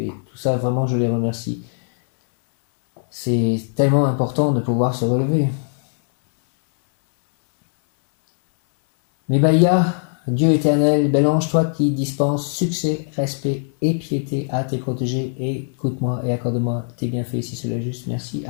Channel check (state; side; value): silent; right; 58 dB below the other